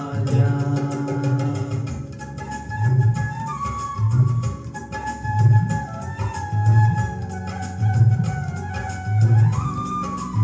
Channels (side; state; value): both; identical; correlation 1.00